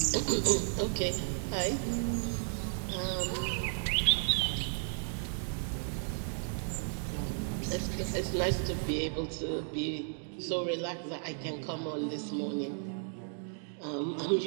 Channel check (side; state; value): left; silent; digital silence